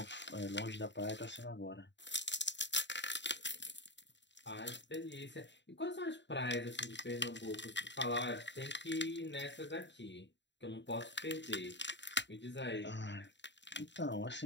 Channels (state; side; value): late; right; 0.52 ms